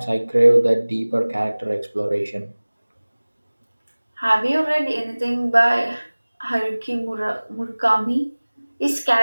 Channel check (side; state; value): both; inverted; correlation -1.00